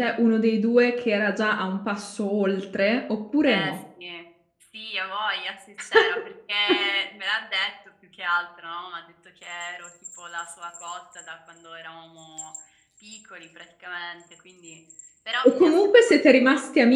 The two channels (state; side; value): identical; both; correlation 1.00